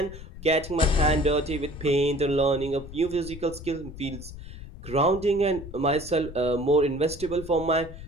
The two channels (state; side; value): noise; left; rumble, 13 dB below the sound